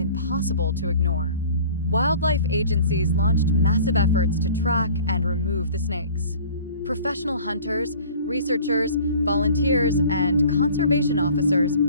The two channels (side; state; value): both; inverted; correlation -0.47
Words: to ignore. Wildlife agencies launched massive efforts to track and remove the snakes. Professional hunters, researchers, volunteers, and conservation officers